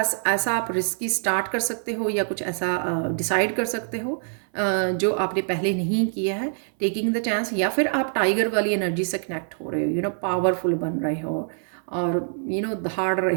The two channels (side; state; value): left; silent; 59 dB below the other